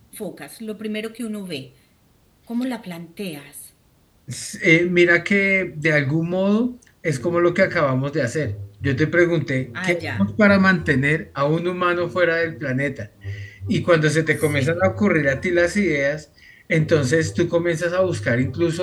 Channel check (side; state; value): both; identical; correlation 1.00